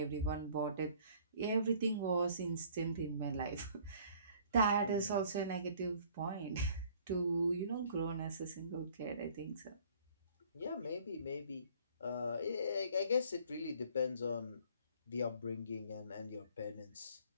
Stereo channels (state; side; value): inverted; both; correlation -0.55